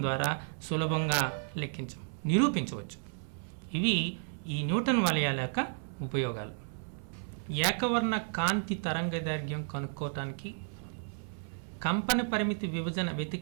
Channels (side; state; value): left; silent; 56 dB below the other